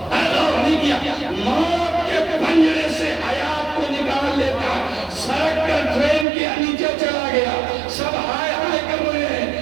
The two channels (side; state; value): left; drops out; at 6.2 s